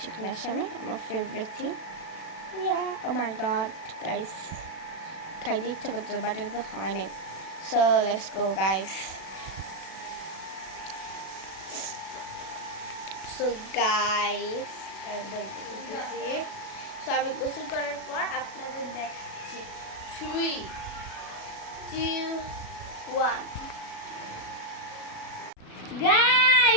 শামি আমার ফেভারিট থিং। ও মাই গড গাইস, খাইতে ইচ্ছা করতে, বাট এটা তো হয় নাই। So let's go guys. So guys, আমি গোসল করার পর আপনাদের দেখাচ্ছি। 3, 2, 1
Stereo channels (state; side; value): late; right; 37 ms